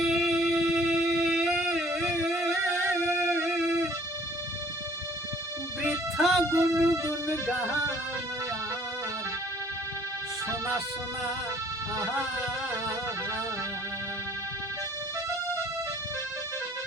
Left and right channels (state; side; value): normal; both; correlation 0.57